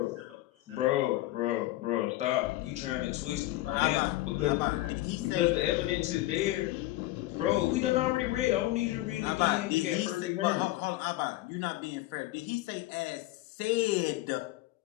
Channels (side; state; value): right; quieter; 17.3 dB